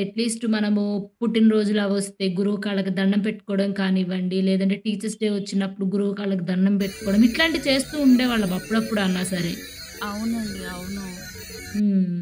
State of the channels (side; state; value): both; identical; correlation 1.00